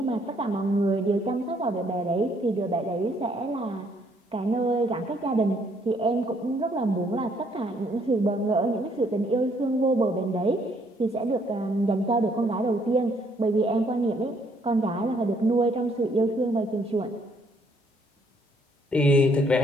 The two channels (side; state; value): both; normal; correlation 0.67